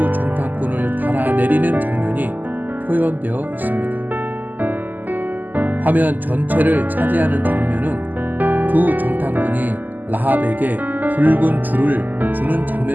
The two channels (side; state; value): left; late; 0.084 ms